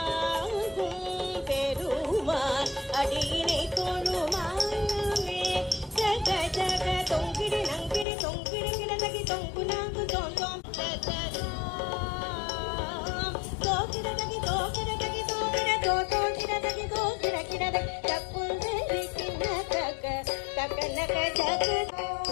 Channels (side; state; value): right; drops out; at 8.1 s